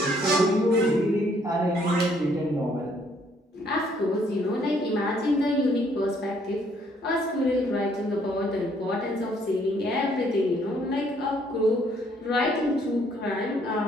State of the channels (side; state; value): both; normal; correlation 0.66